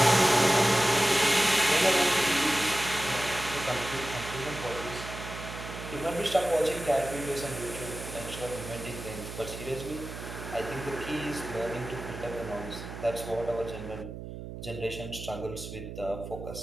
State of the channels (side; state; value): right; noise; hum, 10 dB below the sound